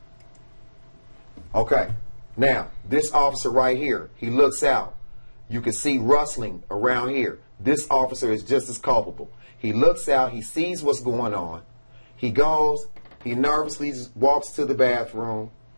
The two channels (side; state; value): both; inverted; correlation -1.00